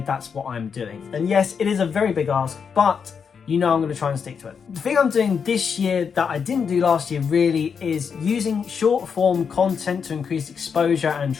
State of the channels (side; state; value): right; quieter; 6.4 dB